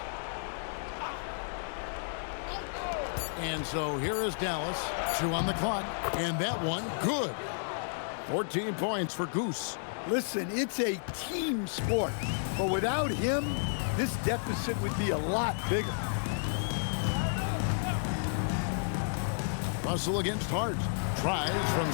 And so here is Dallas, 2 on the clock, and that one, good. 14 points for Goose. Listen, it's a team sport, but without him, this deficit would be a lot bigger. Russell against Hart. Tries from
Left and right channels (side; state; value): right; silent; digital silence